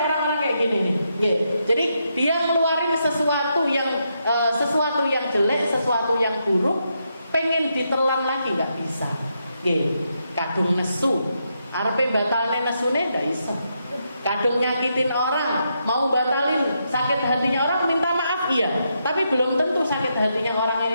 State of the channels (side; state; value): both; inverted; correlation -0.81